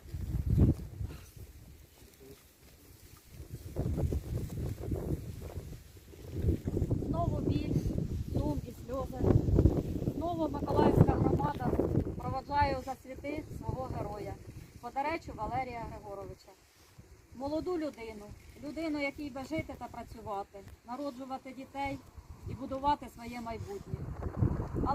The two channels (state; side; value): identical; both; correlation 1.00